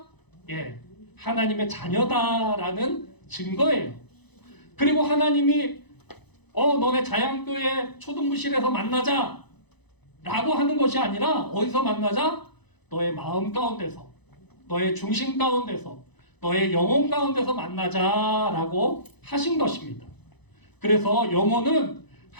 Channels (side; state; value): right; late; 0.99 ms